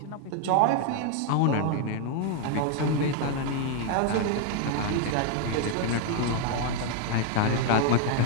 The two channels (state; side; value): different; both; correlation 0.01